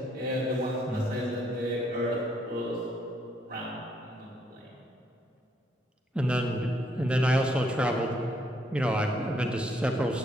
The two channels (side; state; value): both; normal; correlation 0.71